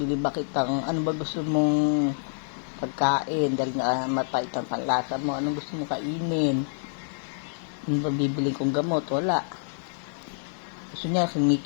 ba kitang, ano ba gusto mong pagkain? Dahil nga mapait ang panlasa mo, anong gusto mong kainin? Ano ba bibili kong gamot? Wala. Gusto niya,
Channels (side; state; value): right; silent; 60 dB below the other